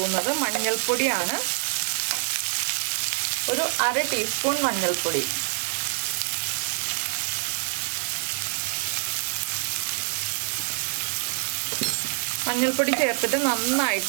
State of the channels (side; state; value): left; silent; digital silence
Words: മഞ്ഞൾപ്പൊടിയാണ്. ഒരു 1/2 ടീസ്പൂൺ മഞ്ഞൾപ്പൊടി. മഞ്ഞൾപ്പൊടി ചേർത്തിട്ട്